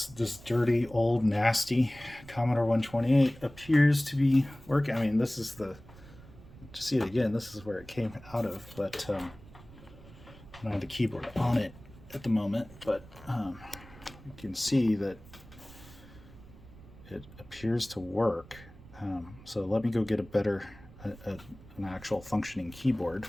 dirty, old, nasty Commodore 128 appears to be working. I mean, this is to see it again, this is where it came out of, but I don't have the keyboard on it at the moment, but you can see that it appears to work. So let me go get an actual functioning keyboard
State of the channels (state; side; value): noise; right; rumble, 20 dB below the sound